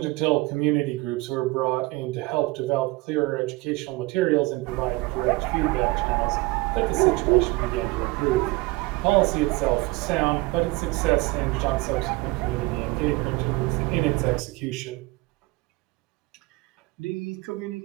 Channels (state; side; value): quieter; left; 22.5 dB